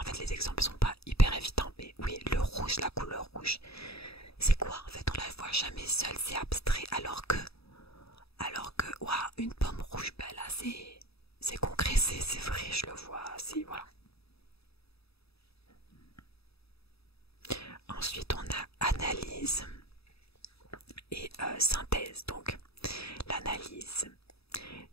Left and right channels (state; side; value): late; right; 0.78 ms